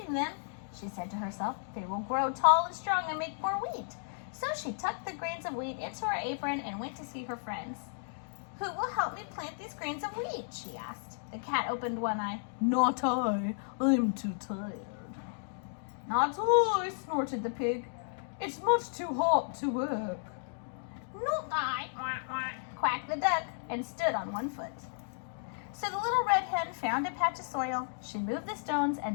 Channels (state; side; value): silent; right; digital silence